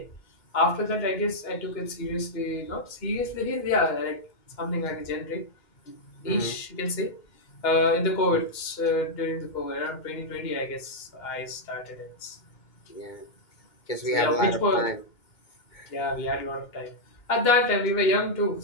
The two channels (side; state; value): right; late; 2.1 ms